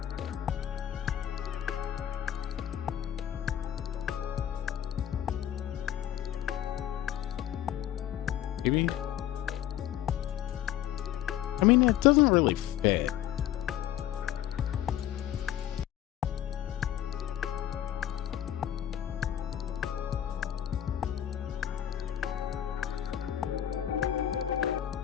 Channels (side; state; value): right; quieter; 11.4 dB